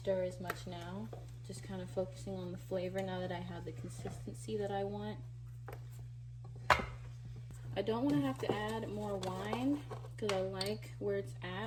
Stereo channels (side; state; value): both; identical; correlation 1.00